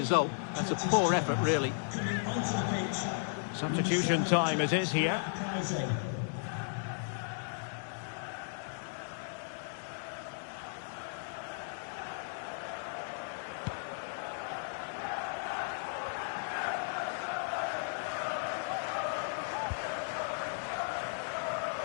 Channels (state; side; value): silent; right; digital silence